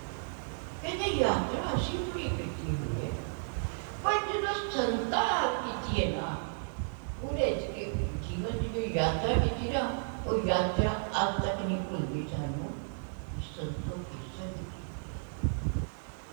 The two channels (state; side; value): silent; left; 56 dB below the other